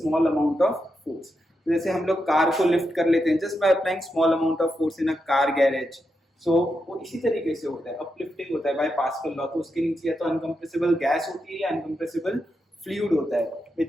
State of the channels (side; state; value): both; normal; correlation 0.85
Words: amount of force. जैसे हम लोग कार को लिफ्ट कर लेते हैं just by applying small amount of force in a car garage. So वो इसी तरीके से होता है, अपलिफ्टिंग होता है बाय पास्कल लॉ. तो उसके नीचे या तो अनकंप्रेसिबल गैस होती है या अनकंप्रेसिबल फ्लूइड होता है